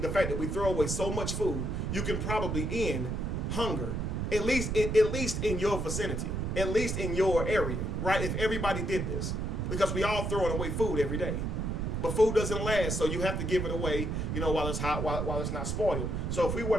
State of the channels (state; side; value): noise; right; rumble, 1 dB below the sound